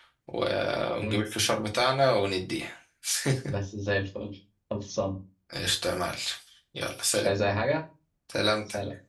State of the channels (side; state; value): both; identical; correlation 1.00